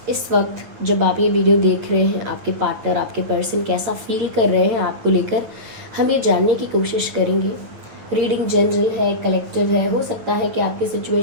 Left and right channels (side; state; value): left; late; 9.1 ms